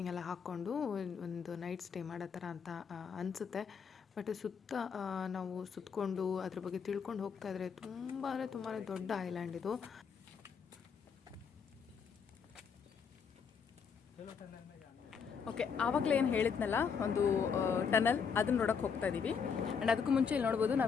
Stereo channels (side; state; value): right; quieter; 6.3 dB